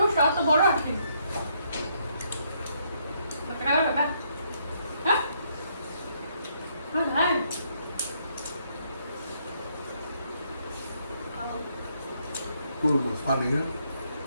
তরমুজটা অত বড় আছে হ্যাঁ হ্যাঁ তরমুজ পানি না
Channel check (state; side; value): inverted; both; correlation -0.73